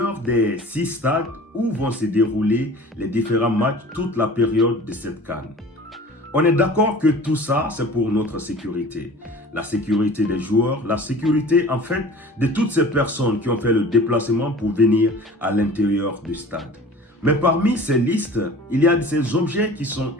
des 6 stades où vont se dérouler les différents matchs toute la période de cette CAN. On est d'accord que tout ça, c'est pour notre sécurité. La sécurité des joueurs, la sécurité en fait de toutes ces personnes qui ont fait le déplacement pour venir à l'intérieur du stade. Mais parmi ces listes, il y a ces objets qui sont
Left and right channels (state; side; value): normal; both; correlation 0.43